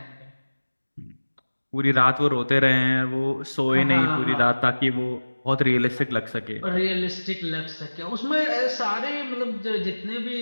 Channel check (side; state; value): both; inverted; correlation -1.00